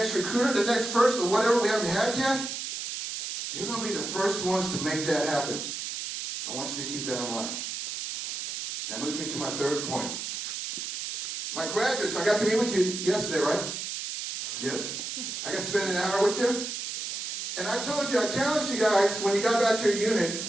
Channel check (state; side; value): noise; right; hiss, 5 dB below the sound